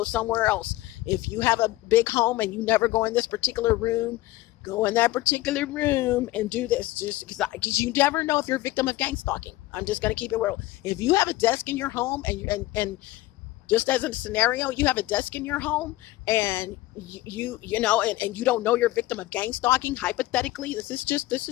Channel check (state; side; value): quieter; right; 17.7 dB